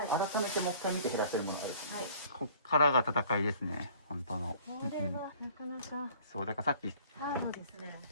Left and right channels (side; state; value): both; inverted; correlation -0.52